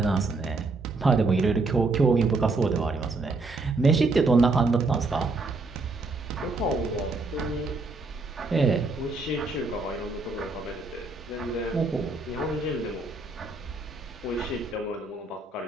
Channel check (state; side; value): quieter; left; 3.5 dB